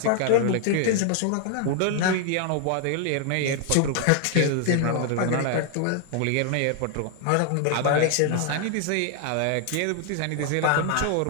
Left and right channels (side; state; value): both; different; correlation 0.00